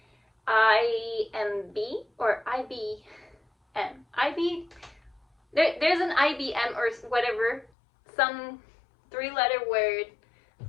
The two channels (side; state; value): right; drops out; at 7.7 s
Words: IMB or IBM. There's an IBM or whatever, some 3-letter word